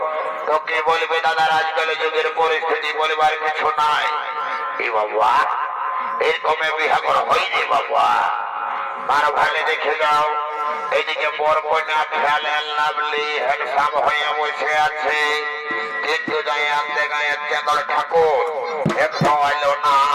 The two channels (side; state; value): both; identical; correlation 1.00